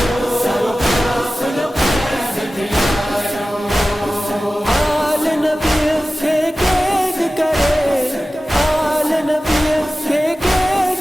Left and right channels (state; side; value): normal; both; correlation 0.96